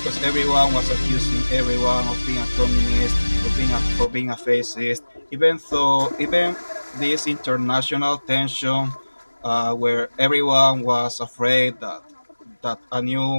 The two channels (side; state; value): both; inverted; correlation -1.00